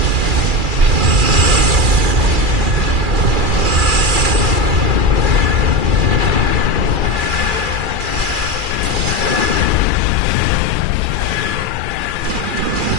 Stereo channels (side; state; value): left; late; 2.4 ms